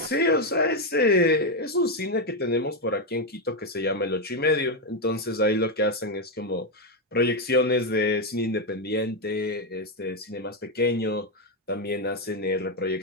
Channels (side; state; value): both; normal; correlation 0.05